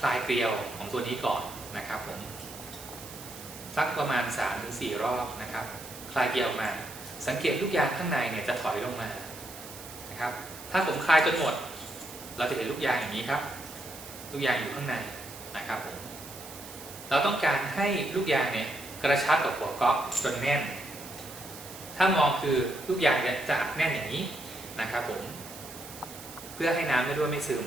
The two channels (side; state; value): right; noise; hiss, 14 dB below the sound